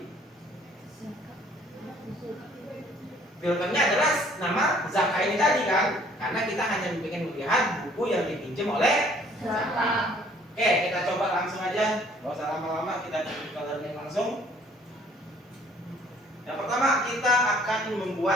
Filternya adalah nama Zaka ini tadi kan? Karena kita hanya ingin melihat buku yang dipinjam oleh Zaka. Oke, kita coba langsung aja. Gak usah lama-lama, kita coba learning langsung. Yang pertama kita akan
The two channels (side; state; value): both; normal; correlation 0.58